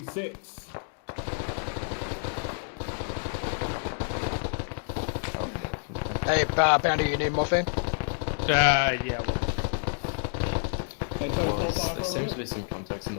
Hey, Panda, you need morphine? Yeah. There seems to be some contacts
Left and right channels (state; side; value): silent; right; digital silence